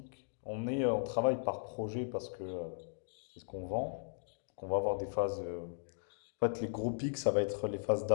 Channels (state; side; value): silent; right; digital silence